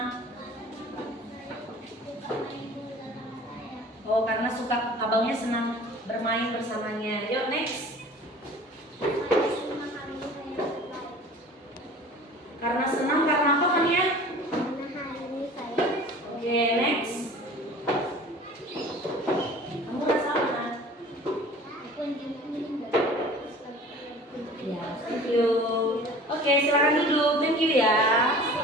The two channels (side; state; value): both; normal; correlation 0.44